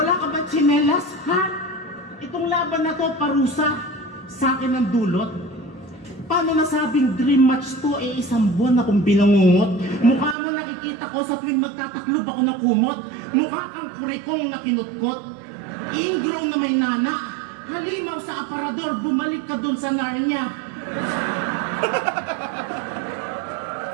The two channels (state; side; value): drops out; left; at 10.4 s